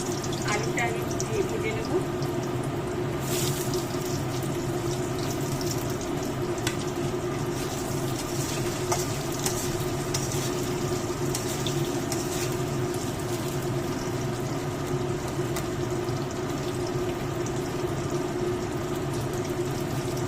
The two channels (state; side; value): identical; both; correlation 1.00